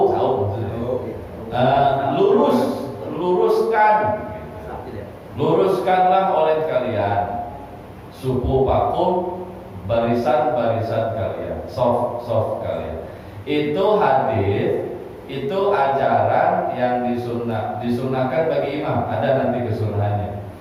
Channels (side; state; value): both; identical; correlation 1.00